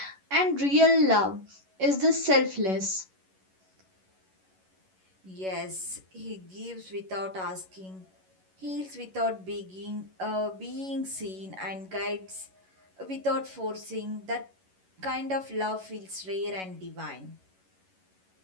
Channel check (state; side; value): late; left; 11 ms